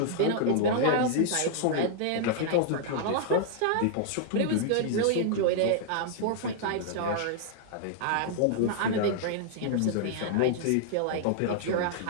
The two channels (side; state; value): both; different; correlation -0.01